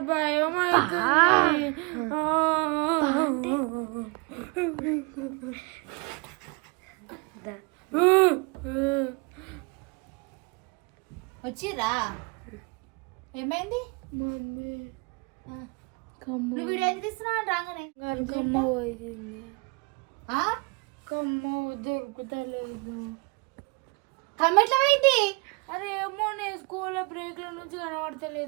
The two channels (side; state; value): left; quieter; 30.4 dB